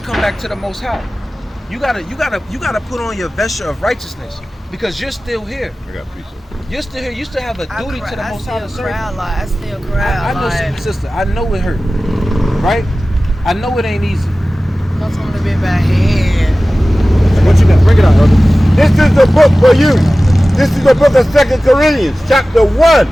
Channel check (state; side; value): normal; both; correlation 0.97